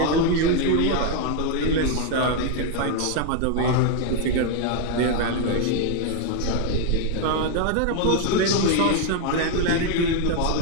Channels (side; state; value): both; different; correlation 0.00